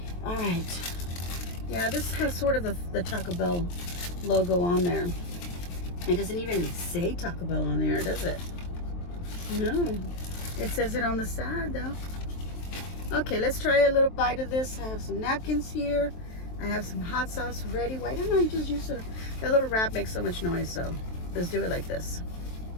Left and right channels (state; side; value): late; right; 23 ms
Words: All right. Yeah, this has sort of the Taco Bell logo on there. It doesn't even say Taco Bell on there, does it? No. It says it on the side though. Okay, let's try a little bite of this. I have some napkins here. I have some hot sauce ready. Why don't I just use it? That little wrap makes so much noise, so let's do it like this.